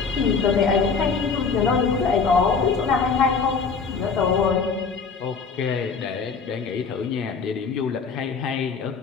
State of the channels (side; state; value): right; quieter; 5.3 dB